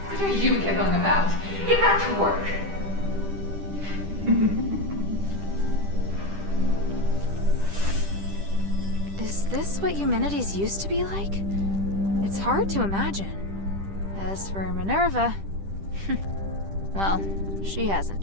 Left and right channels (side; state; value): left; late; 10 ms